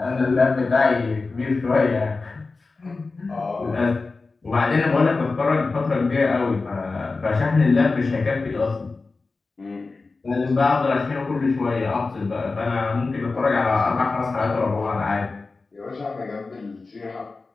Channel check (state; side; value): quieter; right; 3.9 dB